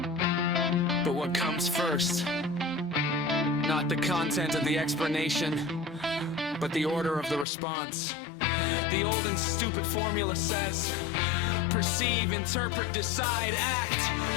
but what comes first. Not the content of the explanation, but the order of the response. The old and stupid formula says, perceive, interpret, decide, act.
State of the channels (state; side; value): drops out; right; at 7.5 s